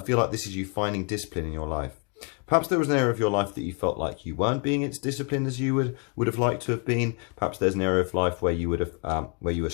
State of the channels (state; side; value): quieter; right; 35.5 dB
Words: like this is you finding discipline in your life. Perhaps there was an area of your life that you felt like you weren't being as disciplined as you would have liked to have been. Perhaps there's an area of life where you would have where you were